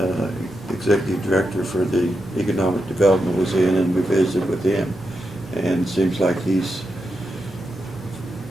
Executive Director for the Economic Development, was in, and we visited with him. And it seems like he's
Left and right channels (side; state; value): both; normal; correlation 0.86